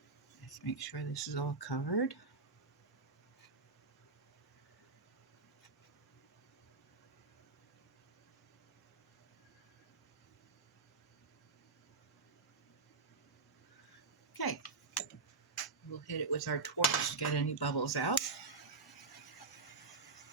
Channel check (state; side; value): quieter; left; 4.4 dB